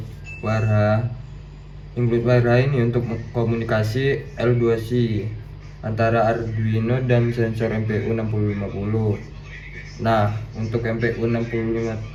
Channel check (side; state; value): both; identical; correlation 1.00